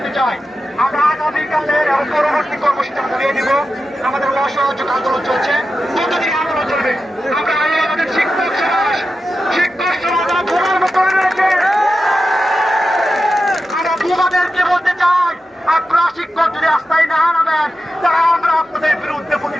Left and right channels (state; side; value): normal; both; correlation 0.91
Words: চাই, আমরা আগামীকালের পরবর্তী কর্মসূচি চালিয়ে দিব। আমাদের অসহযোগ আন্দোলন চলছে, কতদিন আন্দোলন চলবে? আমরা আমাদের শিক্ষক সমাজ করে রয়েছে। আমরা তোমাদেরকে বলতে চাই, আপনারা শিক্ষক যদি রাস্তায় না নামেন তারা আমরা আপনাদের বিরুদ্ধে